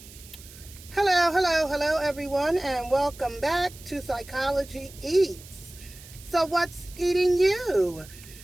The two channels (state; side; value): noise; right; hiss, 19 dB below the sound